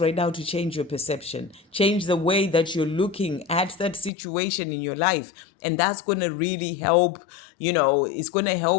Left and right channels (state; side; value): drops out; right; at 4.1 s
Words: right now to change your perception, change the way that you're looking at that situation in your life. And that's going to really help, it's going to